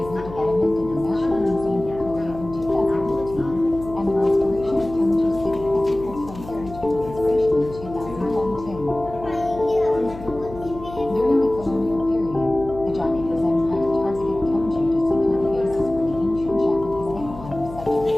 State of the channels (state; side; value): noise; left; hum, 14 dB below the sound